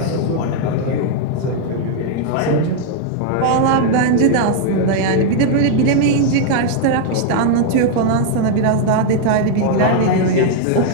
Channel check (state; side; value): different; both; correlation 0.00